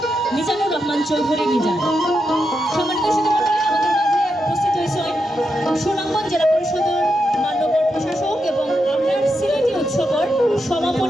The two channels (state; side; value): normal; both; correlation 0.85